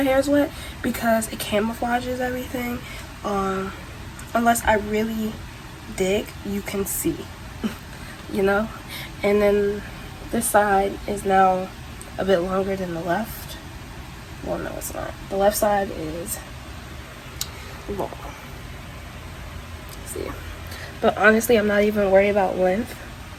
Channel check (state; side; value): identical; both; correlation 1.00